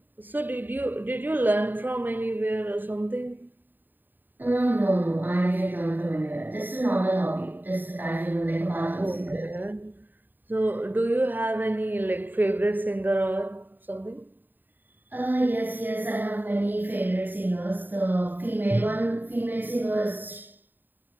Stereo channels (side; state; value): left; late; 0.091 ms